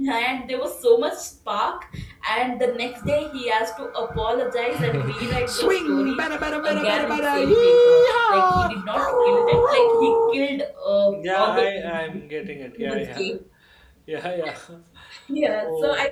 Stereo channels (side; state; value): both; identical; correlation 1.00